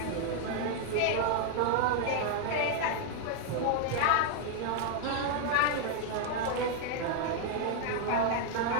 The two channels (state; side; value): different; both; correlation 0.00